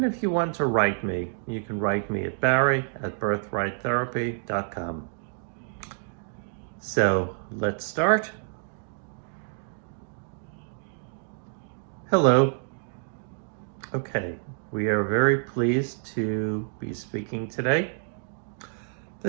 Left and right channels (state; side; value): silent; left; 59 dB below the other